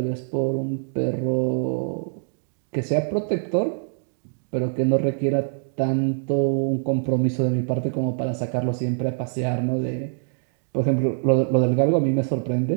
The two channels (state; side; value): silent; left; digital silence